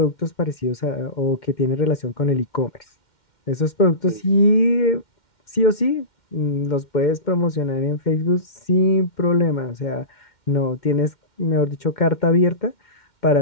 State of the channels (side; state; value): right; late; 2.1 ms